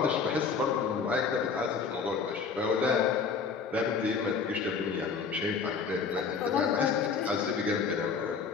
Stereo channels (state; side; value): quieter; right; 5.5 dB